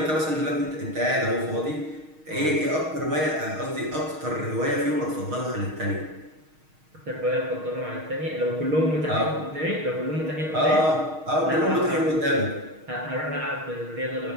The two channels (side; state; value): left; late; 6.4 ms